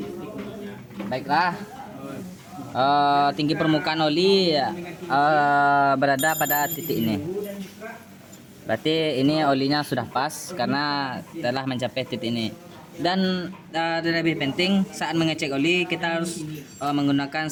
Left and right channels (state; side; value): identical; both; correlation 1.00